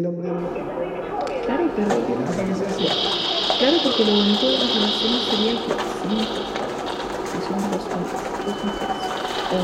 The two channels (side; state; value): both; identical; correlation 1.00